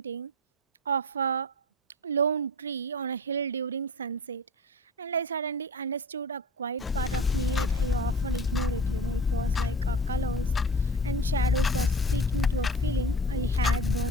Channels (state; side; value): normal; both; correlation 0.38